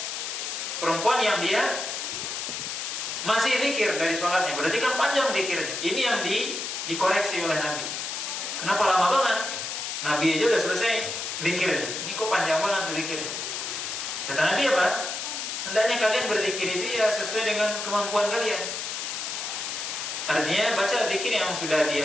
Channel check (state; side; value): noise; left; hiss, 4 dB below the sound